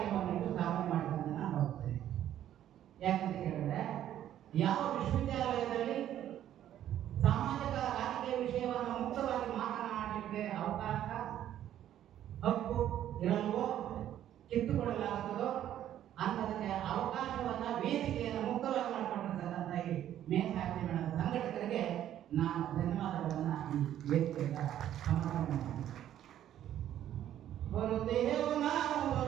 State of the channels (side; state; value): left; quieter; 11.5 dB